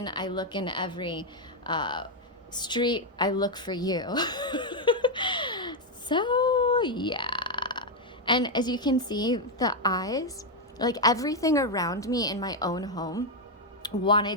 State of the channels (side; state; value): both; normal; correlation 0.02